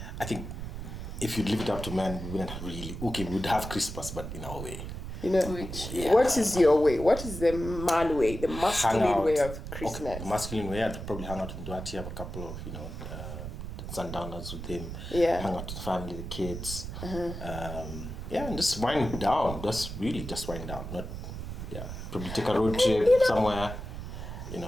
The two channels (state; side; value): noise; right; rumble, 8 dB below the sound